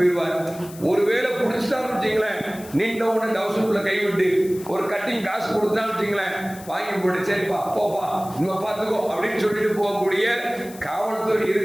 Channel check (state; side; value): noise; left; hiss, 18 dB below the sound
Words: ஒருவேளை பிடிச்சிட்டான்னு வச்சுங்களேன், நின்ற உடனே டவுசருக்குள்ள கைவிட்டு ஒரு கட்டிங் காசு கொடுத்தான்னு வச்சுங்களேன், வாங்கி போட்டு சரிப்பா போப்பா நம்ம பார்த்துக்கோ அப்படின்னு சொல்லிட்டு போகக்கூடிய காவல்துறை